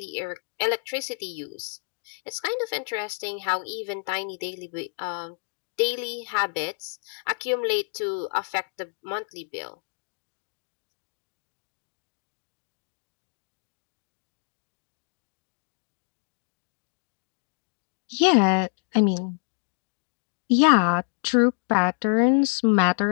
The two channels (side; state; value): right; silent; 60 dB below the other